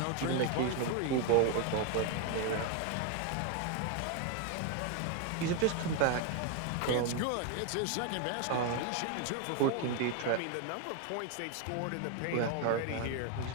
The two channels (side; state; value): both; different; correlation 0.01